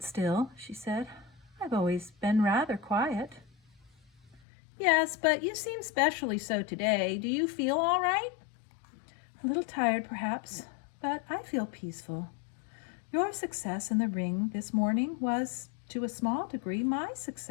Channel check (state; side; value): drops out; right; at 4.4 s